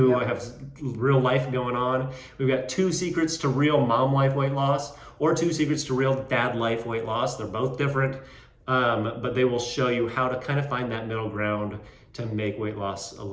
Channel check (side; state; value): both; identical; correlation 1.00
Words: have real life going on. We've got 2 secrets to real mom life weight loss, or 2 secrets to real dad life weight loss. They're both different, but they will show you how to kind of find that middle ground to make weight loss a